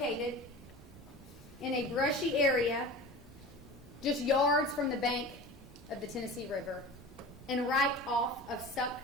in a brushy area just yards from the bank of the Tennessee River and right off of Suck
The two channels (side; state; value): both; normal; correlation 0.35